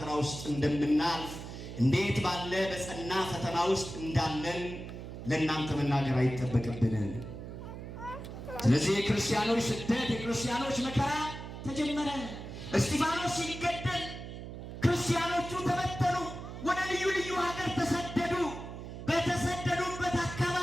ውስጥ እንደምናልፍ እንዴት ባለ በጸና ፈተና ውስጥ እንዳለን ለእናንተ መናገር አይጠበቅብንም። ስለዚህ የክርስቲያኖች ስደት የክርስቲያኖች መከራ ተጀመረ። እስጢፋኖስ ሲገደል ክርስቲያኖቹ ተበተኑ፣ ወደ ልዩ ልዩ ሀገር ተሰደዱ። በተሰደዱበት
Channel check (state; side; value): noise; right; hum, 10 dB below the sound